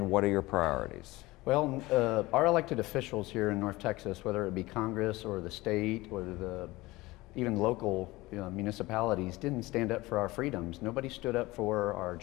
what are your priorities? Well, our elected officials here in North Texas, whether it be Congress or the state or even local municipalities, didn't stand up for our freedoms. Nobody stood up for our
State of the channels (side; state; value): right; quieter; 20.2 dB